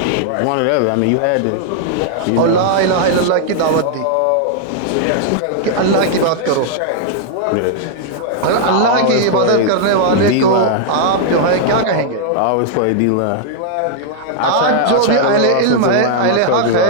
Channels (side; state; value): both; different; correlation -0.01